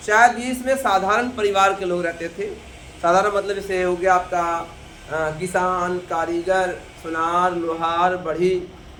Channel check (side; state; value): both; identical; correlation 1.00